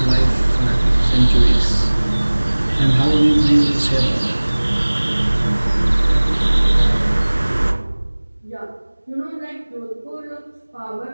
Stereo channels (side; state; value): both; inverted; correlation -1.00